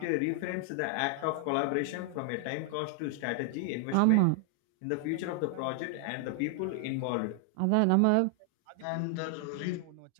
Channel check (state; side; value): different; both; correlation 0.00